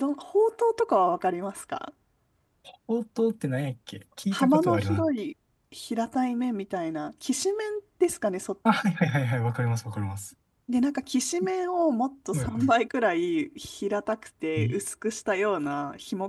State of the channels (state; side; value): identical; both; correlation 1.00